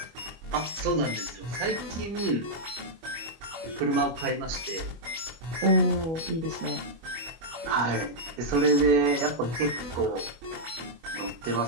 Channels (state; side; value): late; left; 25 ms